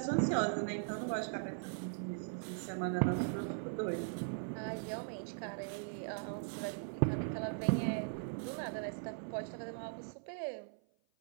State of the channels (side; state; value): left; silent; 51 dB below the other